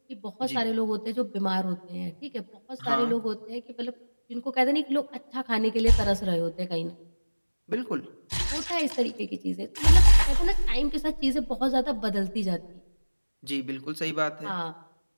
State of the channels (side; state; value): both; inverted; correlation -1.00